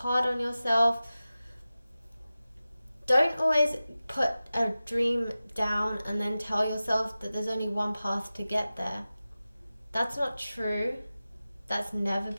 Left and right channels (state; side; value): inverted; both; correlation -0.96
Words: on yourself. Don't always put a dream down and then tell yourself that there's only one path to get there. That's not true. That's never